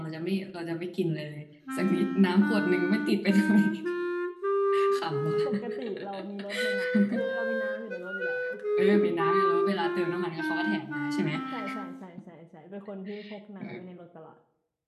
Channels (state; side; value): identical; both; correlation 1.00